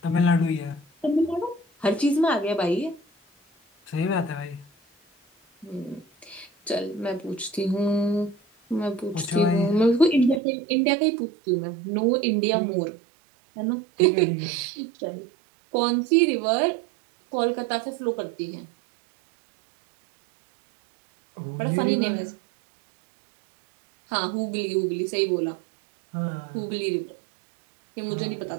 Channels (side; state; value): left; drops out; at 10.4 s